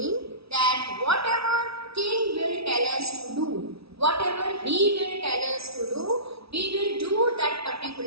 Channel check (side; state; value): left; late; 0.77 ms